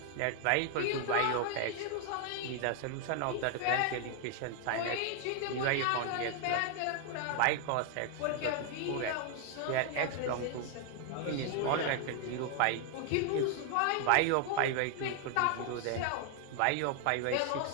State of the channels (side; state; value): both; different; correlation 0.00